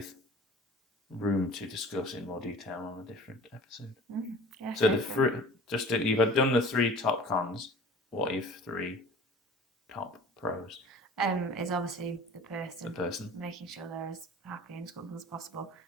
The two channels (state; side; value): normal; both; correlation 0.44